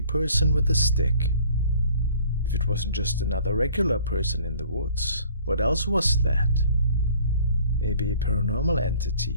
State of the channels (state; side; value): inverted; both; correlation -0.53